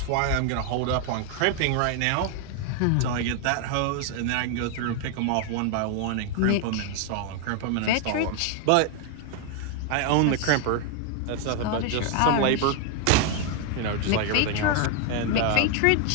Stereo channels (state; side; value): different; both; correlation 0.00